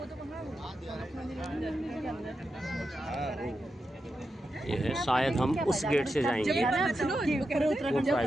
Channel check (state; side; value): normal; both; correlation 0.88